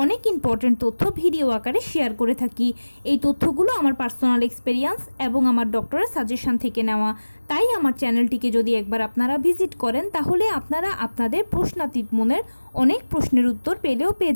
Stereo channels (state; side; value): inverted; both; correlation -1.00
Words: অনেক ইম্পর্টেন্ট তথ্য ভিডিও আকারে শেয়ার করে থাকি। এই তথ্যগুলো আমার পার্সোনাল এক্সপেরিয়েন্স এবং আমার ডক্টরের সাজেশন থেকে নেওয়া। তাই আমার চ্যানেলটিকে যদি একবার আপনারা ভিজিট করেন তাহলে আপনারা আপনাদের প্রশ্নাতীত মনের অনেক প্রশ্নের উত্তর